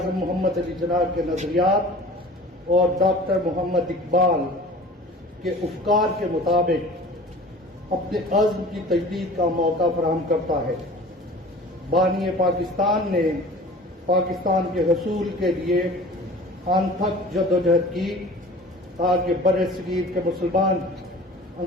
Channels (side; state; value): both; normal; correlation 0.42